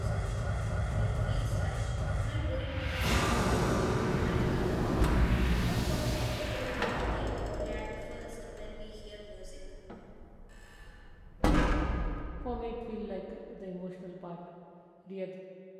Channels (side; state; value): both; identical; correlation 1.00